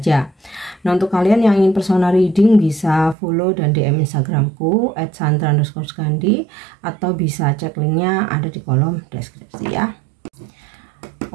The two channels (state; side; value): drops out; left; at 3.2 s